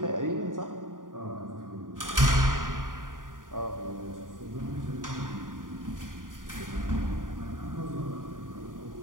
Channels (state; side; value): late; left; 0.89 ms